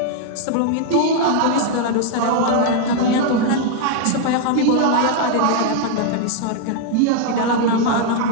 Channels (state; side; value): different; both; correlation 0.00